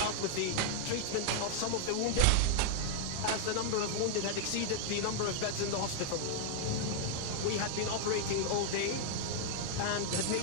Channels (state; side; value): different; both; correlation 0.00